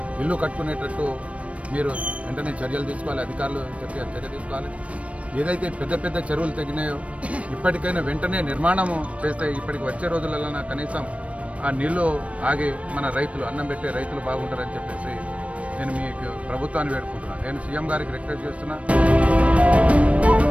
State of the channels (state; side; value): late; left; 0.064 ms